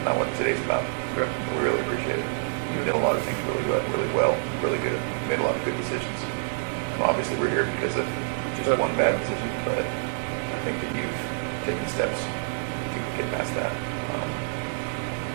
what today's about. So, okay. We really appreciate it. You did a lot of things really well, really good. You made a lot of good decisions. And obviously, we're here because of just one bad decision, but I think that you've taken steps to get past that.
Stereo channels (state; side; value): silent; left; digital silence